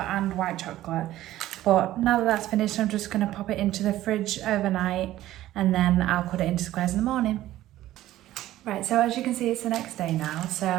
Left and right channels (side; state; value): left; quieter; 14.5 dB